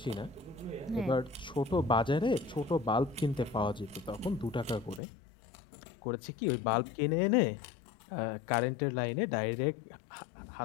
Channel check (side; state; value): right; drops out; at 5.0 s